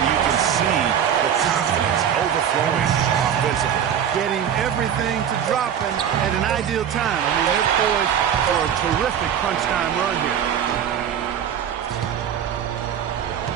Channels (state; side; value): quieter; left; 8.9 dB